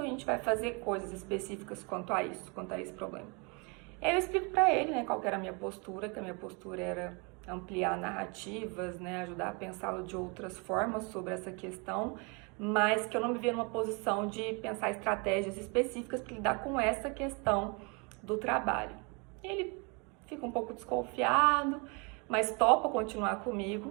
a gente vai fazer coisas específicas quanto a isso, quanto a esse problema? E aí eu explico pra ele, né, qual que era a minha postura, que a minha postura era ampliar narrativas, né, ajudar a pensá-lo de outras formas sobre essa questão, mas que eu não me via numa posição de pensar estratégias específicas para lidar com essa questão do trabalho. Ele fica um pouco desconfiado, mas topa continuar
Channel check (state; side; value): quieter; left; 31.9 dB